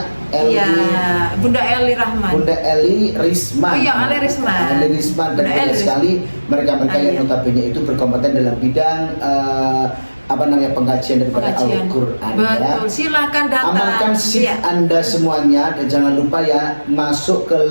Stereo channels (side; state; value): both; inverted; correlation -1.00